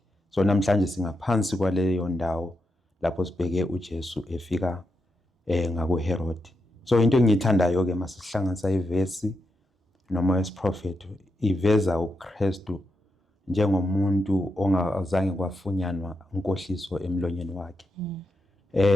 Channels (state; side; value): normal; both; correlation 0.84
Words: So namhlanje singaphansi kwaleyo ndawo lapho sibheke uJesu efika ngakuHerod. So into engiyithandayo ke masihlanganisa ivesi noma wesiprofethi, iveza uKristu njengomuntu ongazange kwafunyanwa inkohliso emlonyeni wakhe.